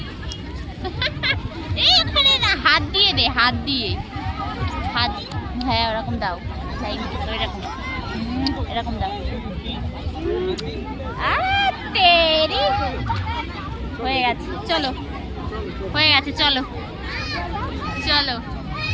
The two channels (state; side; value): identical; both; correlation 1.00